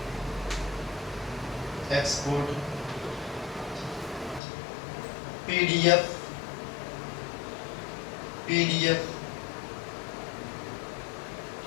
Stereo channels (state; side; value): drops out; right; at 4.4 s